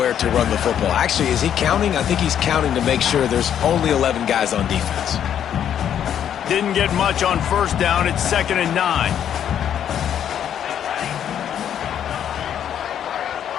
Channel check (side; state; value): right; quieter; 9.5 dB